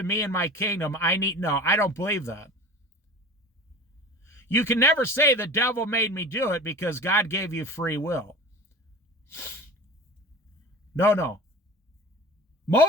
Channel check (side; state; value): both; normal; correlation 0.37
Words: me and my kingdom. No, I don't believe that. You can never say the devil made me do it, because God gave you free will. No.